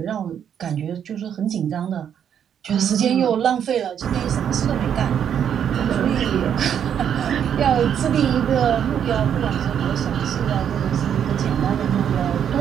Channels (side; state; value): left; quieter; 8.8 dB